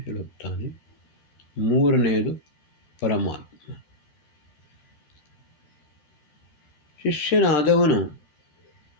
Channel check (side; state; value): right; late; 13 ms